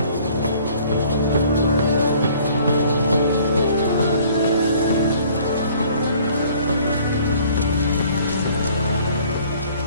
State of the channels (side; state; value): both; inverted; correlation -0.55